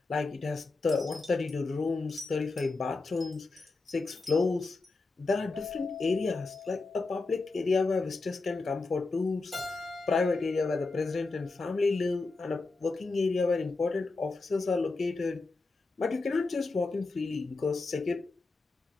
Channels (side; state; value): right; quieter; 3.7 dB